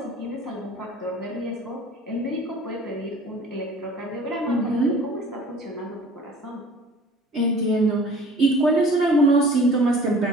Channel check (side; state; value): both; normal; correlation 0.47